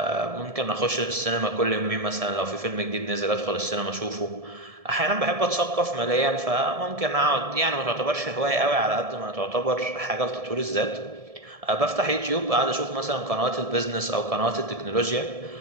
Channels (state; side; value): late; left; 1.7 ms